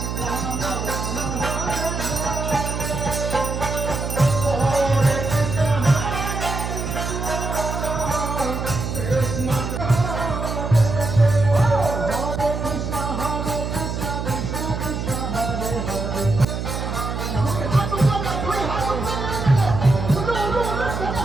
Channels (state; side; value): noise; right; hum, 4 dB below the sound